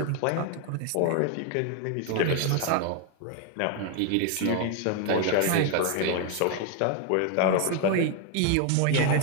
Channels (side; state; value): both; different; correlation 0.01